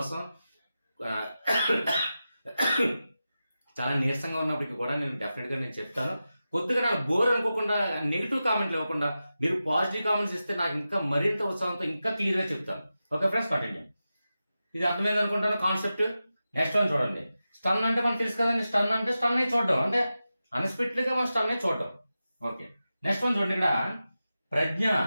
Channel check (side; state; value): both; inverted; correlation -0.92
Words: చాలా నీరసంగా ఉన్నప్పటికీ కూడా నేను డెఫినెట్గా నేను చెప్తాను. కొద్దిగా నాకు బోర్ అనుకోకుండా, నెగిటివ్ కామెంట్లు ఇవ్వకుండా మీరు పాజిటివ్ కామెంట్స్ ఇస్తే నాకు ఇంకా మరింత ఉత్సాహంతో ఇంకా క్లియర్గా చెప్తాను. Okay friends, continue. ఇది అర్థమైంది అనుకుంటాను కాన్సెప్ట్. నెక్స్ట్ వన్ చూడండి. స్టన్ అంటే మనకు తెలుసు కదండి. స్టన్ అంటే స్టన్ అయి చూడడం, అంటే అన్ఎక్స్పెక్టెడ్గా మనం స్టన్ అయి చూడడం. ఓకే, నెక్స్ట్ వన్ చూడండి. ఇక్కడ ప్రజ్ఞ